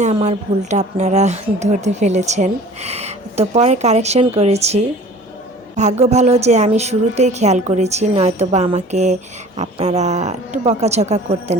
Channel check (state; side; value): normal; both; correlation 0.46